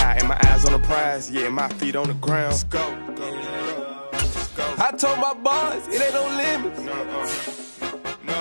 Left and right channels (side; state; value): both; inverted; correlation -1.00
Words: and my eyes on the prize. Yeah, my feet on the ground. Let's go. I told my boys it ain't no limits.